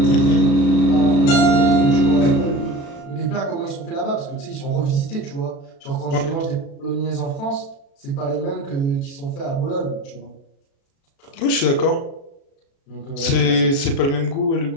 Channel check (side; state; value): right; late; 36 ms